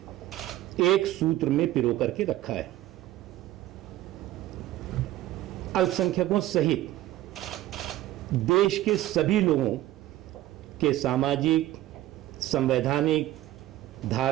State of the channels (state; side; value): quieter; left; 14.9 dB